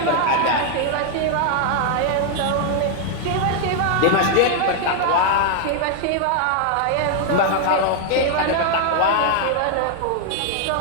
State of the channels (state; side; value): different; both; correlation 0.00